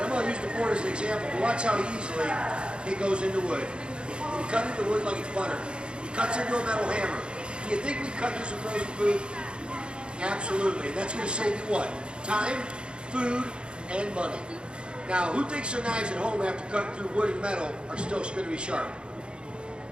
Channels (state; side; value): late; left; 0.054 ms